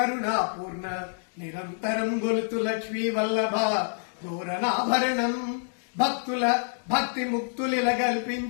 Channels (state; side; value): silent; right; digital silence